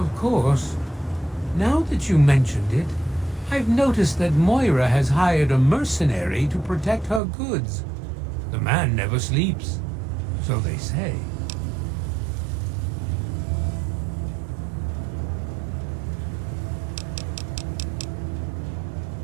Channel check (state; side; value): drops out; left; at 7.2 s